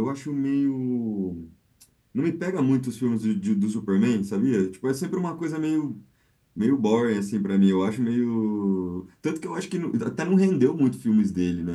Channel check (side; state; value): both; identical; correlation 1.00